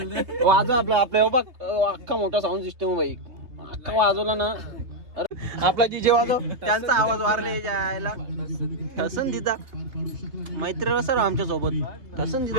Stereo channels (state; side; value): late; left; 3.3 ms